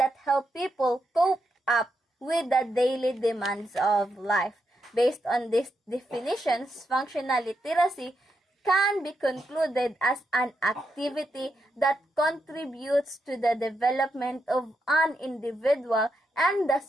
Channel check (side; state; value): both; normal; correlation 0.83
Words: help people cope up with the daily demands of life. Based on these definitions, functional literacy can be concluded as an activity that contributes to the development of an individual and the